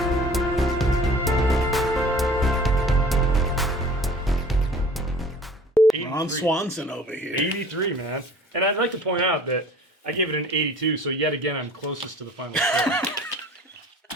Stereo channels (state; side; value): normal; both; correlation 0.47